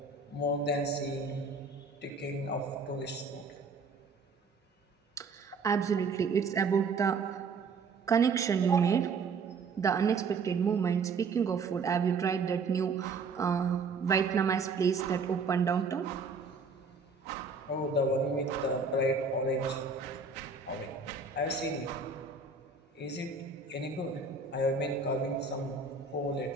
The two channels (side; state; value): left; quieter; 4.5 dB